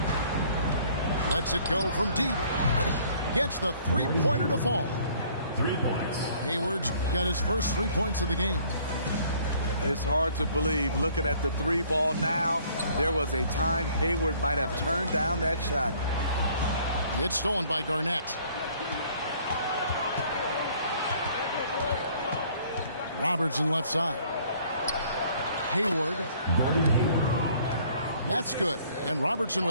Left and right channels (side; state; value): both; inverted; correlation -0.58